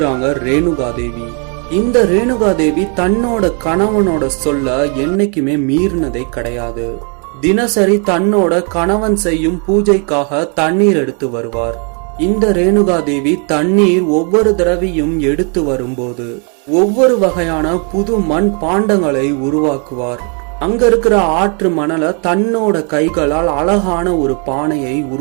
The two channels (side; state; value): left; quieter; 37.9 dB